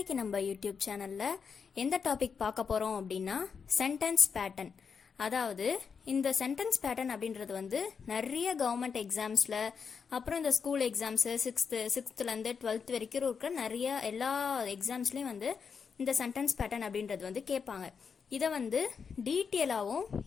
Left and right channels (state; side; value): quieter; right; 6.1 dB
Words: நம்ம YouTube சேனலில் எந்த டாபிக் பார்க்க போகிறோம் அப்படின்னா சென்டென்ஸ் பேட்டர்ன். அதாவது இந்த சென்டென்ஸ் பேட்டர்ன் அப்படின்றது நிறைய கவர்மெண்ட் எக்ஸாம்ஸில், அப்புறம் இந்த ஸ்கூல் எக்ஸாம்ஸு சிக்ஸ்த்துலேருந்து 12th வரைக்கும் இருக்கிற நிறைய எல்லா எக்ஸாம்ஸ்லேயும் இந்த சென்டென்ஸ் பேட்டர்ன் அப்படின்றது கேட்பாங்க. இதை டீட்டெயிலாகவும்